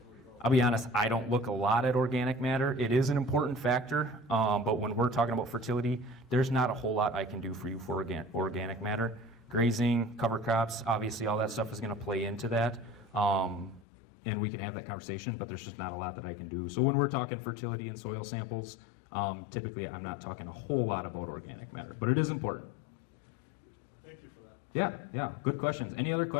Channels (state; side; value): drops out; right; at 13.9 s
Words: I'll be honest, I don't look a lot at organic matter. It is an important factor, but when we're talking about fertility, there's not a whole lot I can do for you for organic matter. Grazing, cover crops, obviously all that stuff is going to play into that, and we can have that conversation, but there's just not a lot that I can do. So when we're talking fertility and soil samples, typically I'm not talking a whole lot about organic matter, but it is important. Thank you for that. Yeah, good questions. Any other